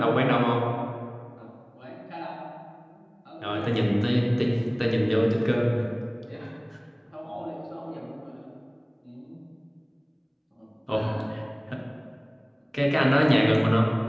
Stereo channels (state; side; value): identical; both; correlation 1.00